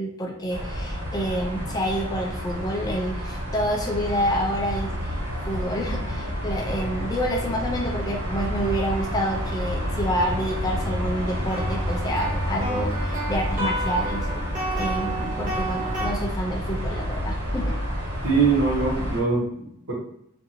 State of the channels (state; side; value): normal; both; correlation 0.51